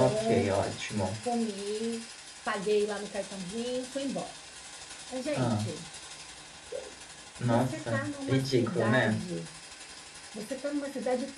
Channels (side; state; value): both; identical; correlation 1.00